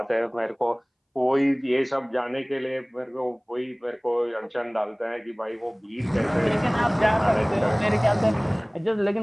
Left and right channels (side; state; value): both; identical; correlation 1.00